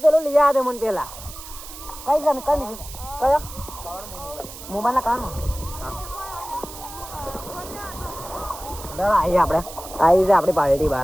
લઈ આ દે મને પેલા કઈ જાને કઈ કયો મોબાઈલ ના કાન દડા આવી આપણે આવી છે આપણી પાર્ટી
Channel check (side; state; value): right; noise; hiss, 14 dB below the sound